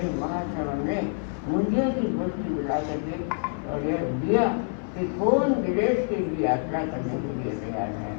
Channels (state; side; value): silent; right; 60 dB below the other